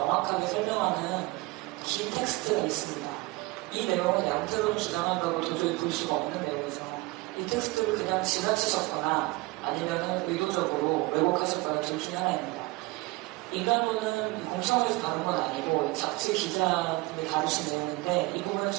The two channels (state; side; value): quieter; left; 22.5 dB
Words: 설명하는 긴 텍스트가 있습니다. 이 내용은 양태론 주장한다고 도저히 볼 수가 없는 내용이죠. 이 텍스트를 그냥 지나치셨거나 아니면 의도적으로 왜곡하셨거나 둘 중에 하나입니다. 인간론은 공청회에서 다룬 건 아니고 잡지 기자분이 다루신 내용인데 이 부분은